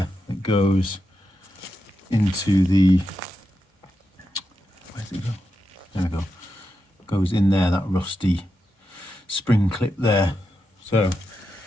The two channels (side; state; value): both; normal; correlation 0.87